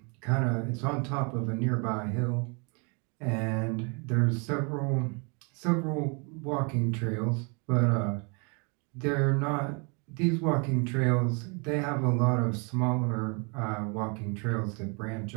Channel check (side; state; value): left; quieter; 33.7 dB